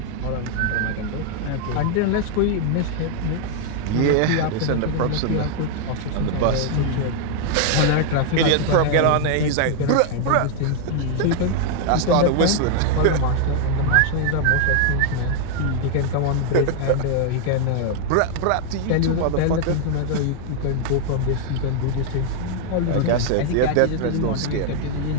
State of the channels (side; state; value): both; different; correlation 0.00